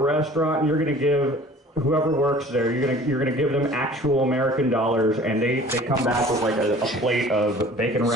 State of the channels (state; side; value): normal; both; correlation 0.47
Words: and you're gonna give whoever works there, you're gonna give them actual American dollars, and they come back with like a plate of bacon